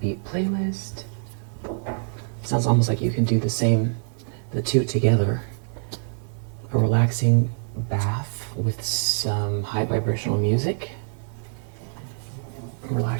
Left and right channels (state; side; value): silent; left; digital silence